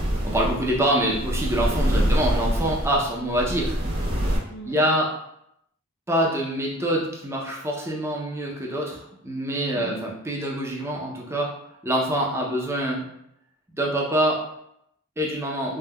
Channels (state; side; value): normal; both; correlation 0.48